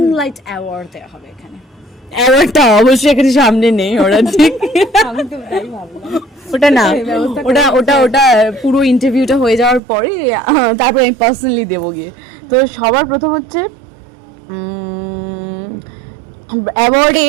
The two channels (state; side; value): drops out; left; at 9.8 s